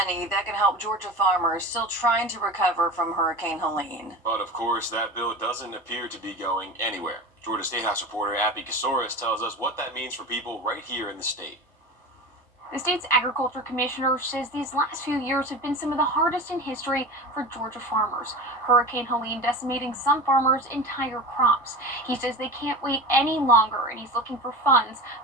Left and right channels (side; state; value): both; normal; correlation 0.30